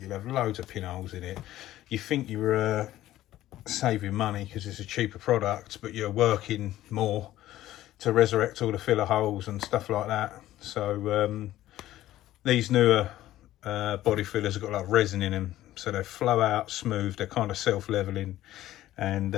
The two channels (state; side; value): quieter; right; 14.3 dB